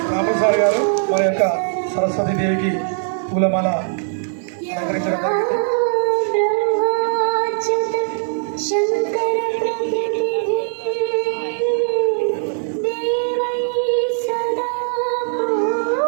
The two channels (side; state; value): left; silent; digital silence